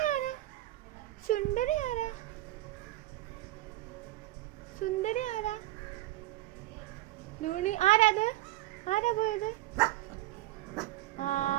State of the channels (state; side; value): quieter; left; 16.7 dB